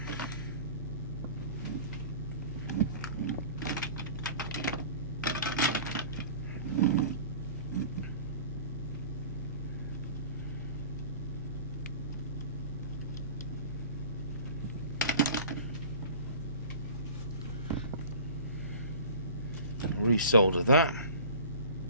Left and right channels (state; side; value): inverted; both; correlation -0.41